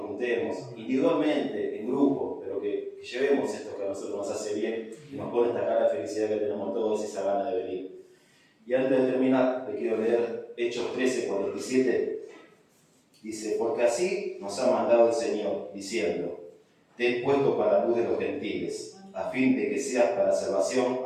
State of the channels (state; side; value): identical; both; correlation 1.00